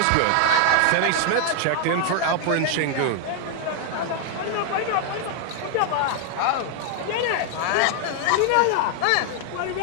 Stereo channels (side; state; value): both; different; correlation 0.00